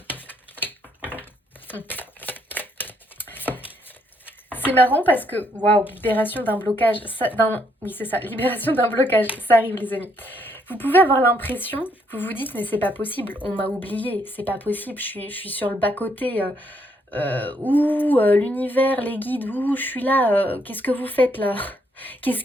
C'est marrant parce que, waouh, libération d'un blocage, oui c'est ça, libération d'un blocage, ça arrive les amis. Vous pouvez avoir l'impression, vous vous dites mais c'est pas possible, on m'a oublié, c'est pas possible, je suis sur le bas-côté, l'univers, les guides, je suis là, qu'est-ce que vous faites là? Qu'est-ce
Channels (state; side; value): normal; both; correlation 0.72